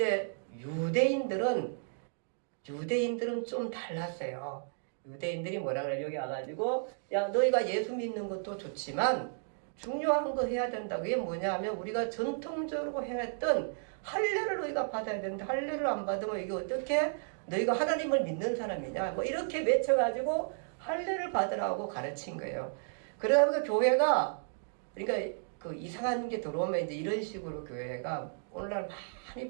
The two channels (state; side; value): silent; left; digital silence